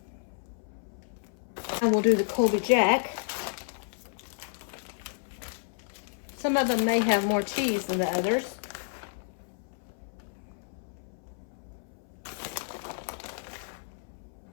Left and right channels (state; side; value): silent; right; 57 dB below the other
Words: And we'll do the Colby Jack. Some of them may have more cheese than the others.